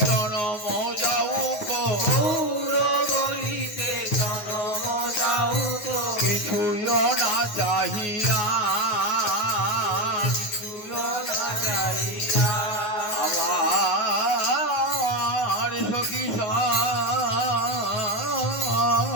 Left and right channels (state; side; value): late; right; 9.5 ms